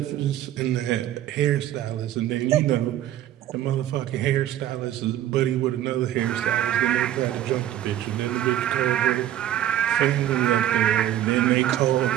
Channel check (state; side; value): quieter; left; 12.3 dB